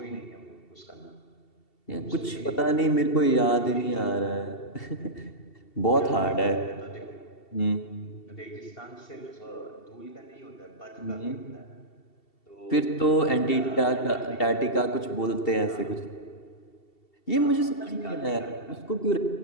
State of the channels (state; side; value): late; right; 2.7 ms